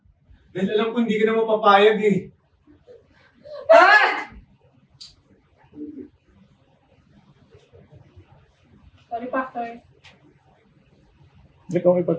Dahil alam ko hindi ka na mapapayag eh. Bakit? Sorry, Pastor. Hindi ko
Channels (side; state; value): both; identical; correlation 1.00